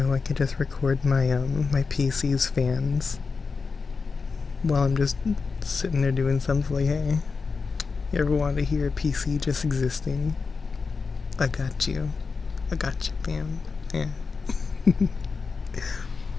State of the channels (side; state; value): right; quieter; 4.8 dB